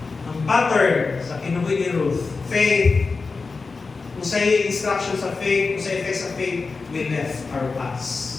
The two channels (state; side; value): quieter; right; 4.3 dB